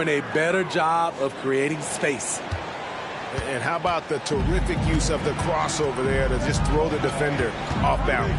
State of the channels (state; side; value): identical; both; correlation 1.00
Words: a better job of creating space. And how about the terrific use of the crossover there to just throw the defender off